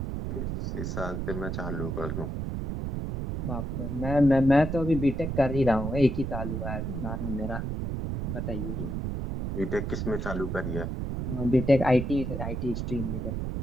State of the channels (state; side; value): noise; right; rumble, 3 dB below the sound